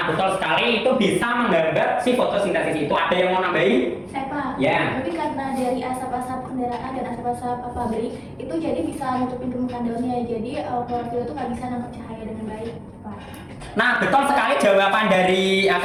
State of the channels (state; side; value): identical; both; correlation 1.00